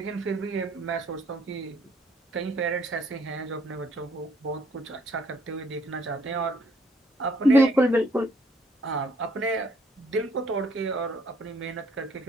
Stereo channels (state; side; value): normal; both; correlation 0.65